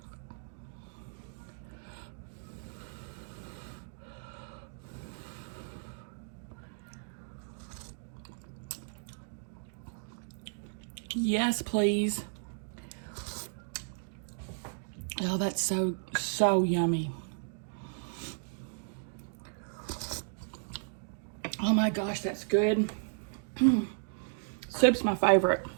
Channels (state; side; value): silent; left; digital silence